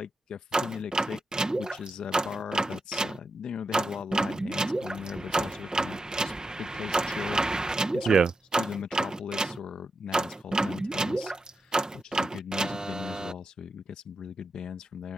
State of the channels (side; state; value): both; normal; correlation 0.87